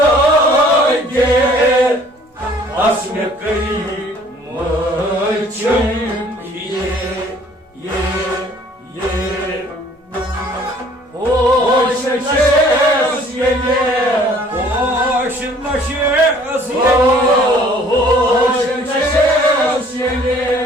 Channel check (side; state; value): both; normal; correlation 0.55